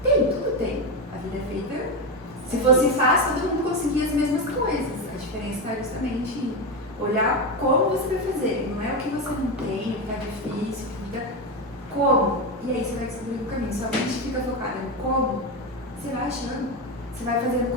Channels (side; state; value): both; normal; correlation 0.13